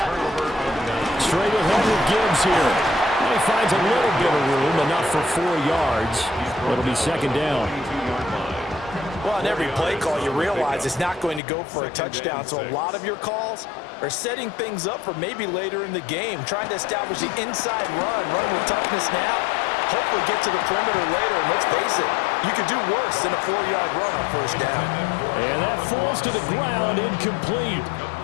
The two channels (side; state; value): right; drops out; at 11.4 s